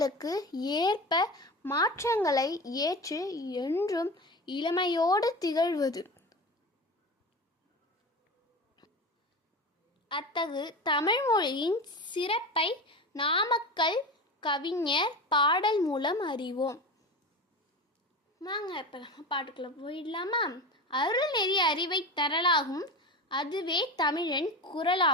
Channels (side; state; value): both; normal; correlation 0.28